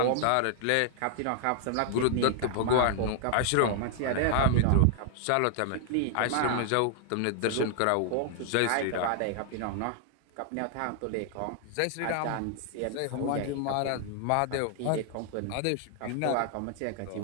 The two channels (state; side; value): different; both; correlation 0.00